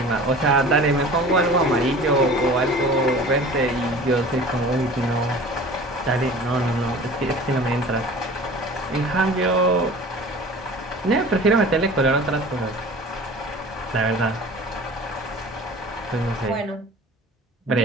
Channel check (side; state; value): both; normal; correlation 0.41